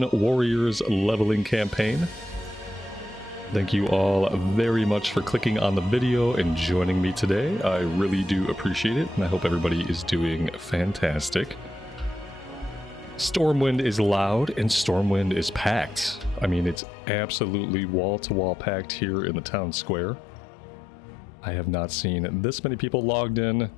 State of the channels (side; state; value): right; drops out; at 16.8 s